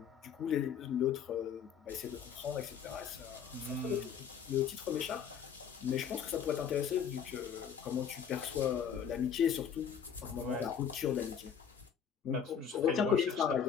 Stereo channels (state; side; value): quieter; right; 7.7 dB